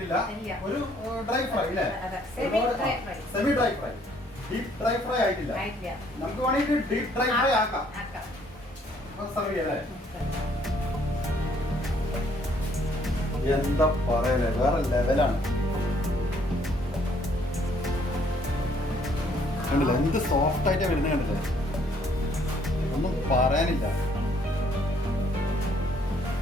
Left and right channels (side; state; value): both; normal; correlation 0.65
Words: ഒരു ഡ്രൈ ഫ്രൈ അല്ലേ, semi dry fry, deep dry fry ആയിട്ടില്ല. നമുക്ക് വേണമെങ്കിൽ ഡീപ് ഡ്രൈ ഫ്രൈ ആക്കാം. സർവ് ചെയ്യല്ലേ? എന്താ പറയലേ, വേറെ ലെവലാണ്. കണ്ടില്ല എന്ത് സോഫ്റ്റ് ആയിട്ടാ വരുന്നത്, കണ്ടില്ലേ, ഒന്നും പറയാനില്ല.